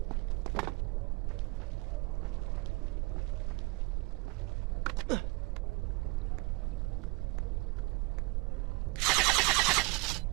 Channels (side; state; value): left; quieter; 26.6 dB